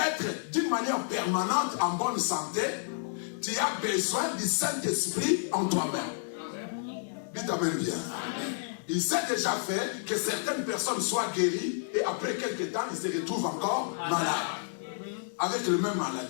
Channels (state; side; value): silent; right; digital silence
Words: d'une manière permanente en bonne santé, tu as besoin du Saint-Esprit en toi-même. Dites amen bien. Il s'est déjà fait que certaines personnes soient guéries et après quelques temps, ils se retrouvent encore malades. Avec la même